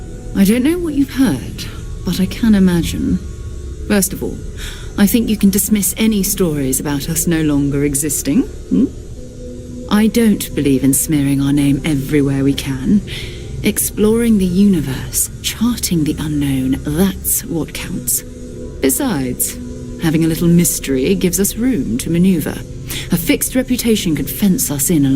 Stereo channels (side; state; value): both; identical; correlation 1.00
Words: I don't know what you've heard, but I can imagine. First of all, I think you can dismiss any stories about us no longer existing. I don't believe in smearing our name everywhere we can. Exploring the universe, charting the unknown, that's what counts. Besides, having a little mystery gives us room to maneuver. A fixed reputation could fence us in a